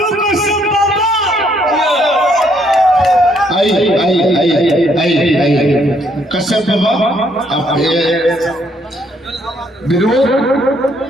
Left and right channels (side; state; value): both; normal; correlation 0.69